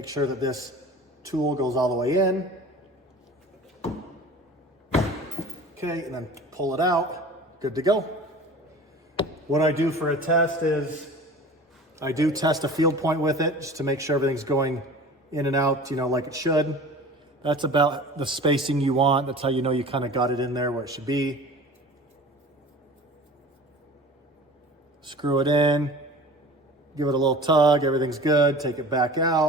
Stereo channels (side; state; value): both; normal; correlation 0.40